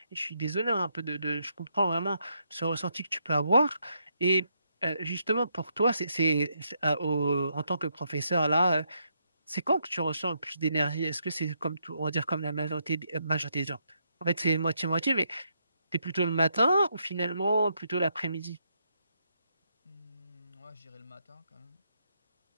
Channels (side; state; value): both; inverted; correlation -0.77